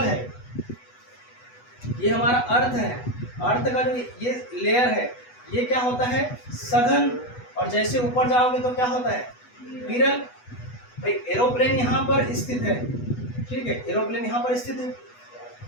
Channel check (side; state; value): right; late; 8.1 ms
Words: है ये हमारा अर्थ है। अर्थ का जो ये लेयर है ये क्या होता है? सघन। और जैसे ऊपर जाओगे तो क्या होता है? विरल। भाई एरोप्लेन यहाँ पर स्थित है, ठीक है, एरोप्लेन यहाँ पर स्थित है,